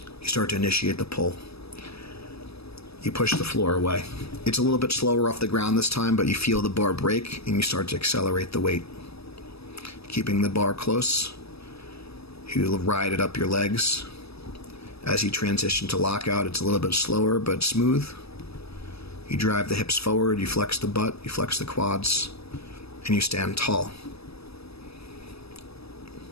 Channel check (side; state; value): right; late; 0.78 ms